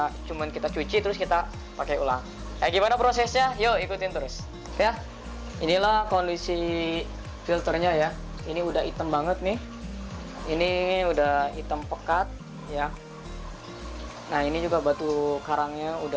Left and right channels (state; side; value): identical; both; correlation 1.00